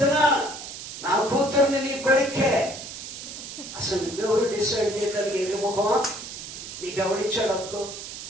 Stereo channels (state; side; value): noise; right; hiss, 10 dB below the sound